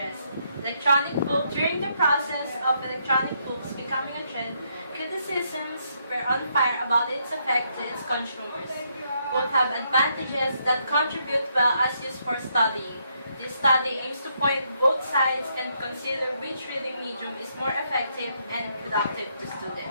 Electronic book. During the process of electronic books becoming a trend, criticisms were on fire about its effect to its consumers. Both have advantages that contribute well as used for studying. This study aims to point both sides and consider which reading medium is more effective and productive to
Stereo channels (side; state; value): both; inverted; correlation -0.75